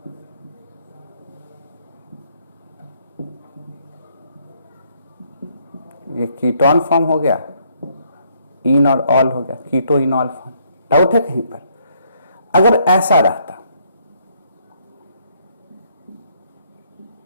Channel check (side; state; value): both; inverted; correlation -0.69